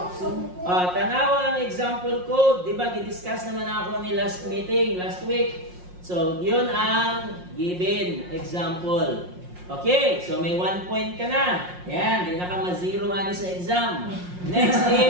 Tanawa ang example code. Diba, gidiscuss naman ako ni last meeting, last week. So, yun ang given example. Okay, so may 1 point ka na. Ayan, di na ka ma-zero ani sa exam. Next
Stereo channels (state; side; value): late; left; 5.6 ms